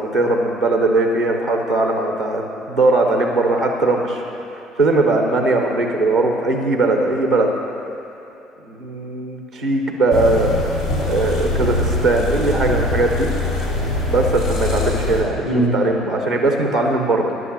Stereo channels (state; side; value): normal; both; correlation 0.52